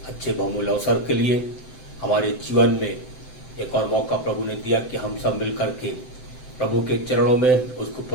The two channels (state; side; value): late; right; 7.8 ms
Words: अच्छे बहुमूल्य अवसर के लिए। हमारे जीवन में एक और मौका प्रभु ने दिया कि हम सब मिल करके प्रभु के चरणों में उसकी